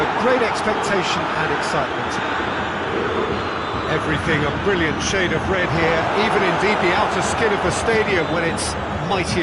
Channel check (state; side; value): identical; both; correlation 1.00